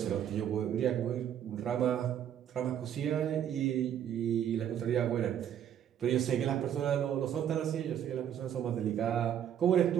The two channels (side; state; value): left; quieter; 9.8 dB